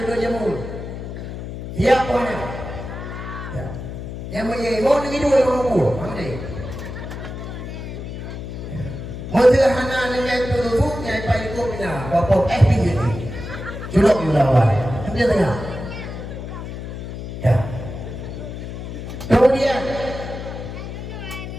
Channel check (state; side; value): noise; left; hum, 8 dB below the sound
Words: jamun. Siapa ni? Ya. Yang mau begitu orang mampu. Mana? Sederhana dengan itu yang paling ikutnya bapak FPJ ni. Julok lawan. Dia tengah. Ya. Kemudian